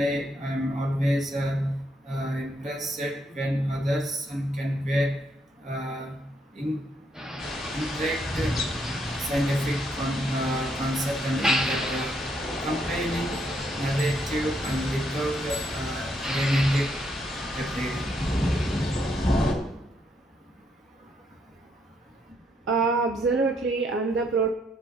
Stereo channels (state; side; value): normal; both; correlation 0.74